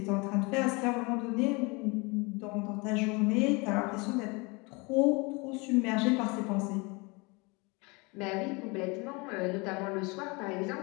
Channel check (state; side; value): quieter; right; 27.9 dB